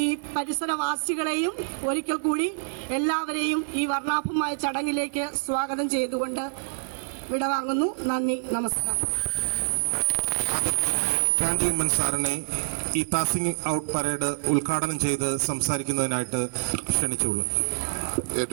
ഈ പരിസരവാസികളെയും ഒരിക്കൽ കൂടി എല്ലാവരെയും ഈ വർണ്ണാഭമായ ചടങ്ങിലേക്ക് സ്വാഗതം ചെയ്തുകൊണ്ട് വിടവാങ്ങുന്നു. നന്ദി, നമസ്കാരം. ആദരണീയനായ ചാണ്ടി ഉമ്മൻ സാറിനെ ഈ പാസിംഗ് ഔട്ട് പരേഡ് ഉദ്ഘാടനം ചെയ്ത് സംസാരിക്കുന്നതിനായിട്ട് ക്ഷണിച്ചുള്ളൂ.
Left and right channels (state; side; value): silent; left; digital silence